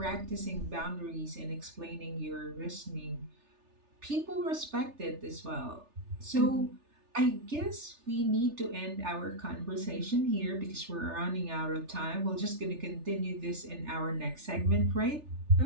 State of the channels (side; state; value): left; late; 3.3 ms